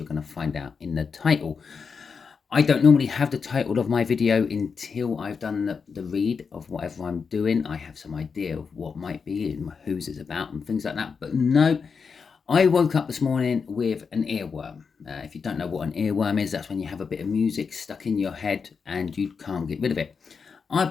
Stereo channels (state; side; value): quieter; right; 5.6 dB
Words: going to find out in the title. I don't normally have the title of my video until I've done the read of whatever I'm doing. I have some idea of what might be and whose it's about and things like that, but no, I woke up this morning with an earworm. If you don't know what an earworm is, that's when you have a bit of music stuck in your head and you can't get rid of it. I've